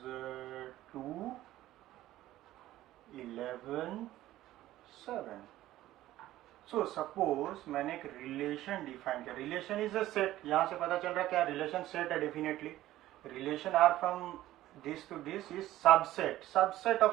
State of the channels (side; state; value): left; quieter; 14.8 dB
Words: 2 11 7। सो सपोज मैंने एक रिलेशन डिफाइन किया, रिलेशन इज अ सेट, यहां से पता चल रहा है क्या, रिलेशन सेट है definitely. Relation R from this to this is subset, subset